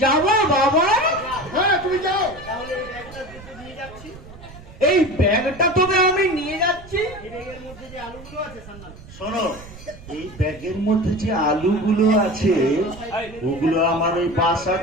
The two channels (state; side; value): noise; right; rumble, 18 dB below the sound